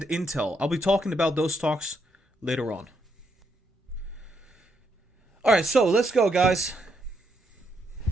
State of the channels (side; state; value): both; normal; correlation 0.77